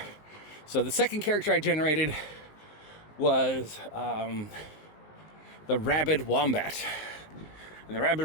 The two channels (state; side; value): late; right; 19 ms